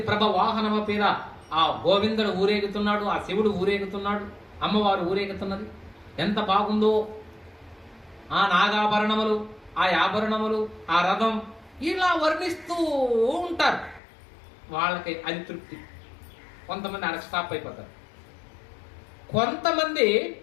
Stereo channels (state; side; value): drops out; right; at 14.0 s